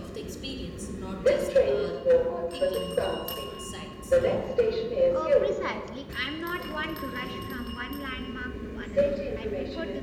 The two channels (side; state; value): both; identical; correlation 1.00